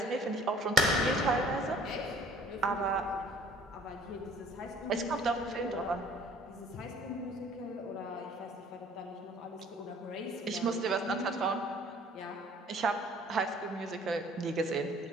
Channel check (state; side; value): normal; both; correlation 0.53